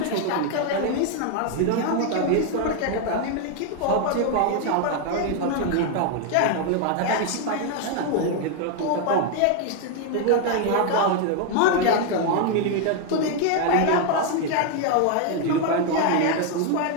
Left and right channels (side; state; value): both; different; correlation 0.01